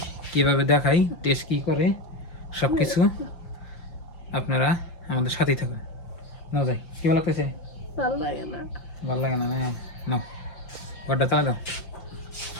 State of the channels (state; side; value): late; right; 5.8 ms